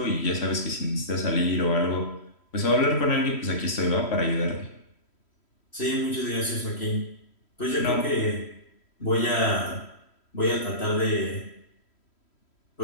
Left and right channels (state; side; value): late; right; 3.1 ms